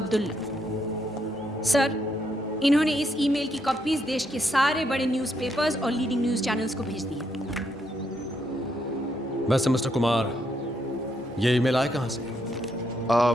सर, इन्होंने इस ईमेल की कॉपीज देश के सारे बड़े न्यूज़पेपर्स और लीडिंग न्यूज़ चैनल्स को भेज दी है। वैसे मिस्टर कुमार, ये ईमेल आया कहाँ से?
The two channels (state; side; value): normal; both; correlation 0.76